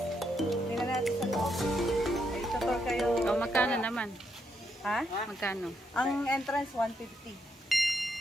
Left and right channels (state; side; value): normal; both; correlation 0.78